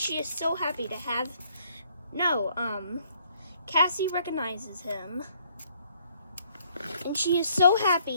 is so happy to have... Cassie recognizes him, and she is so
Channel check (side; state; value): both; inverted; correlation -0.66